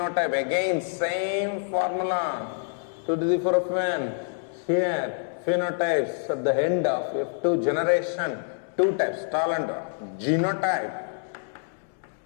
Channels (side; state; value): right; silent; digital silence